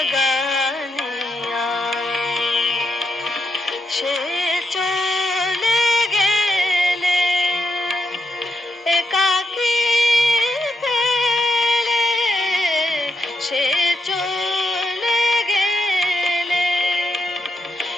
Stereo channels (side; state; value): both; normal; correlation 0.79